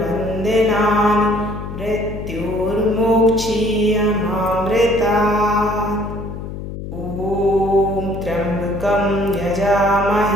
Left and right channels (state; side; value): noise; left; hum, 8 dB below the sound